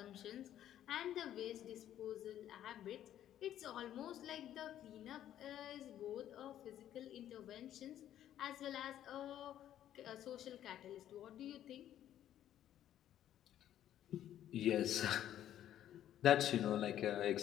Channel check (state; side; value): quieter; right; 11.5 dB